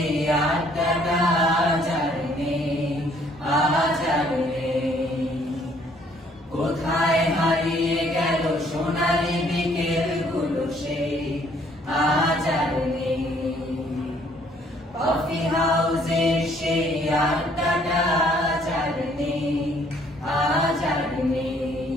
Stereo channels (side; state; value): both; normal; correlation 0.63